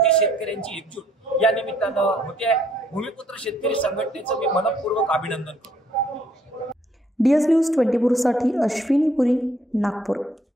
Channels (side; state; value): both; normal; correlation 0.66